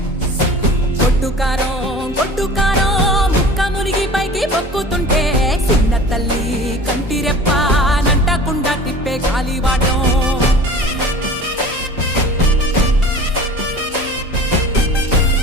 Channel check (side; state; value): both; normal; correlation 0.41